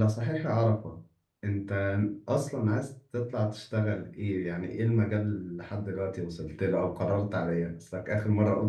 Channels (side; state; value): both; identical; correlation 1.00